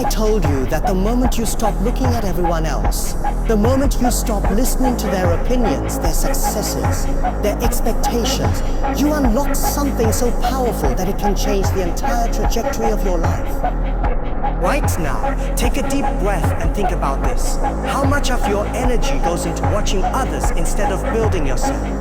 told you that the moment you stop looking at everyone else, the moment you stop listening to their opinions, their successes, their expectations, you unlock something so powerful that it can change the entire trajectory of your life? Right now, take a deep breath and think about this. How much of your energy goes into watching others instead of building yourself?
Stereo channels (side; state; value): both; identical; correlation 1.00